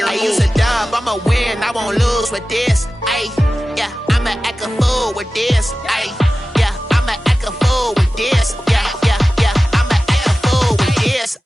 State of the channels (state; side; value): normal; both; correlation 0.95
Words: I use a dub, I'ma win, I won't lose with this. Ay, yeah, I'ma act a fool with this. Ay, yeah, I'ma act a fool with this. Yeah, yeah, yeah, I'ma act a fool with this.